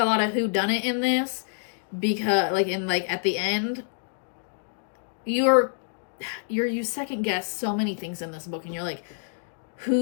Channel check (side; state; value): right; silent; digital silence